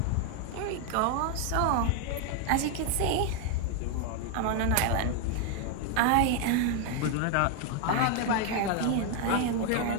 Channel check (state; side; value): different; both; correlation 0.01